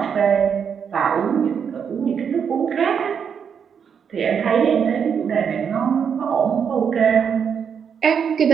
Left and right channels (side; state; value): left; quieter; 7.2 dB